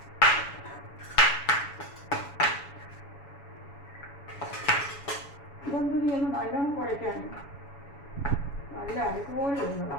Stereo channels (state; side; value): late; right; 7.1 ms